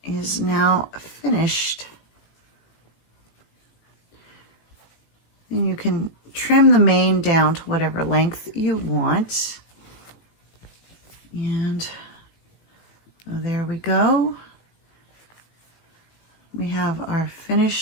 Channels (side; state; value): right; late; 18 ms